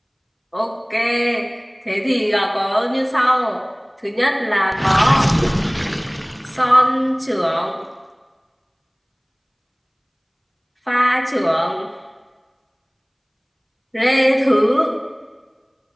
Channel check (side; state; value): both; identical; correlation 1.00